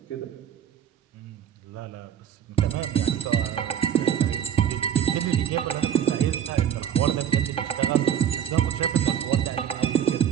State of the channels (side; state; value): left; quieter; 9.5 dB